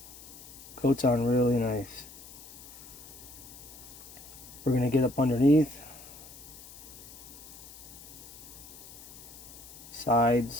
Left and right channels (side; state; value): left; noise; hiss, 17 dB below the sound